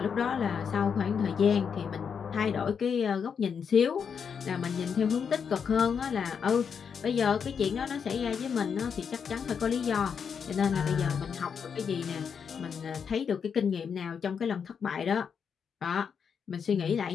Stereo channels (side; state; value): right; quieter; 6.8 dB